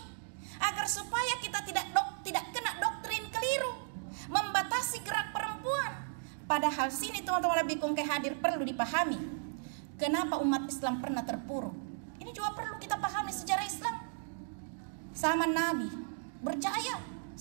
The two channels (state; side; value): silent; left; digital silence